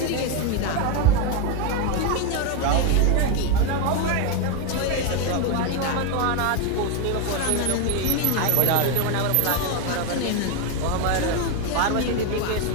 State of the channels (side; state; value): both; different; correlation 0.01